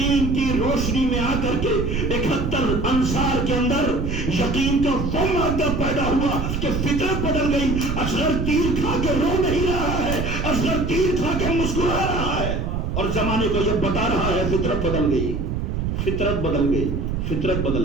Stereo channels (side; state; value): right; noise; rumble, 2 dB below the sound